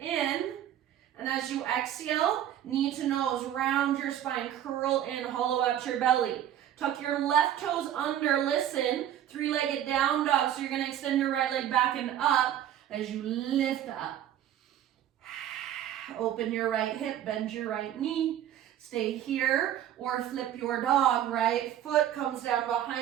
in. And as you exhale, knee to nose, round your spine, curl in, hollow out your belly. Tuck your left toes under, listen, 3-legged down dog. So you're going to extend your right leg back and up as you lift up. Open your right hip, bend your right knee. Stay here or flip your dog. Right foot comes down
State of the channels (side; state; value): left; quieter; 11.2 dB